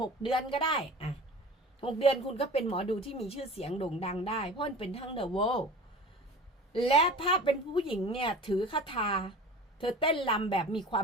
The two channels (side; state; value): both; normal; correlation 0.38